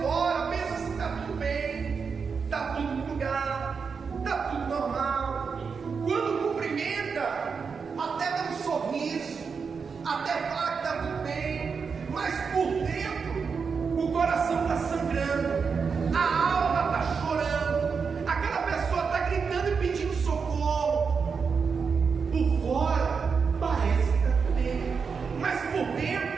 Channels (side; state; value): left; quieter; 5.6 dB